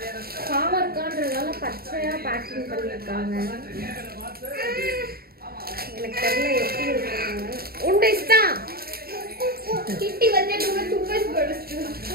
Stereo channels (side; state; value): left; late; 0.44 ms